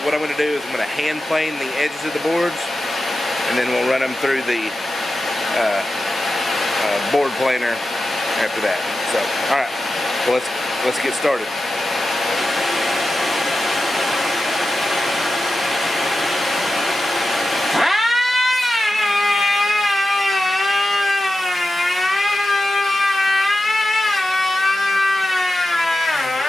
what I'm going to do is I'm going to hand plane the edges of the boards, and then we'll run them through the board planer after that. So, all right, well, let's get started.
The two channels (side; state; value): both; normal; correlation 0.92